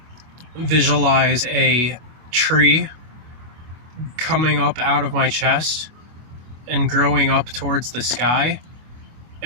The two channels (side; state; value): left; late; 24 ms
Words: visualize a tree coming up out of my chest and growing up towards the sky,